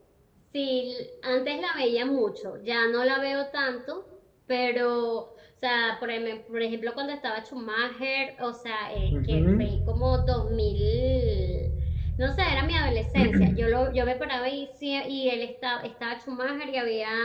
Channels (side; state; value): both; identical; correlation 1.00